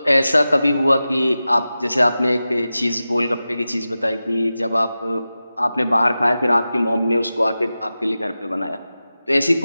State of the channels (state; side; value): inverted; both; correlation -0.94